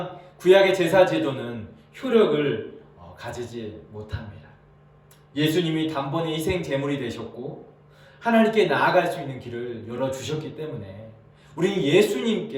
구약의 제사 제도는 효력을 가지지 못합니다. 예수님이 단번에 희생 제물이 되셨고 하나님께 나아갈 수 있는 길을 열어주셨기 때문에 우리는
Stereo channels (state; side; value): identical; both; correlation 1.00